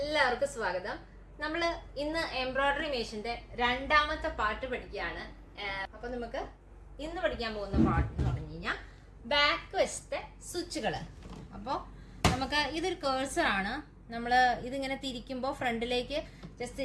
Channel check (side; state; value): both; identical; correlation 1.00